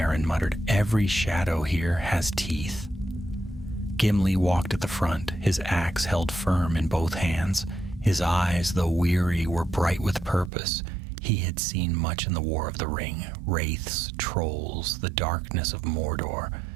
muttered. "Every shadow here has teeth." Gimli walked at the front, his axe held firm in both hands. His eyes, though weary, were bright with purpose. He had seen much in the War of the Ring, wraiths, trolls, the darkness of Mordor,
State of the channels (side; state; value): left; drops out; at 10.5 s